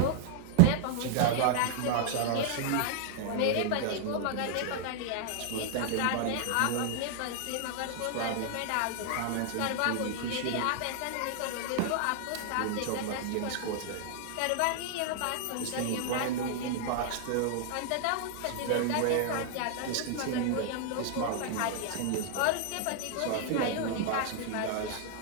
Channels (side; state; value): both; different; correlation 0.00